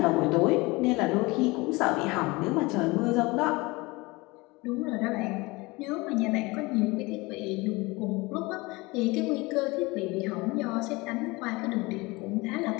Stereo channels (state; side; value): quieter; right; 23.6 dB